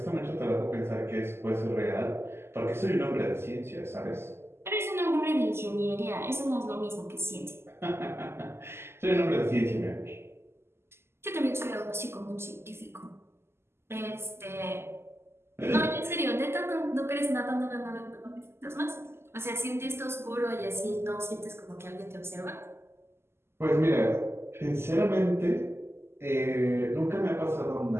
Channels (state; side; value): late; left; 0.12 ms